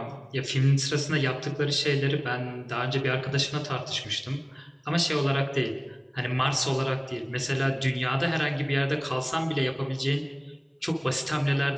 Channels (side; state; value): both; identical; correlation 1.00